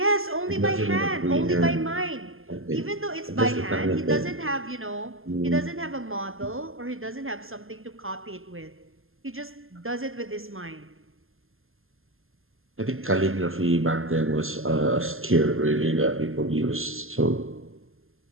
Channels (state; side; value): late; left; 0.61 ms